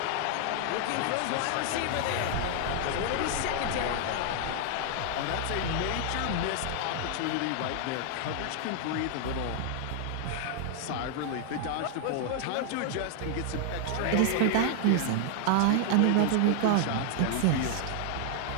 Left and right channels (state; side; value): different; both; correlation 0.00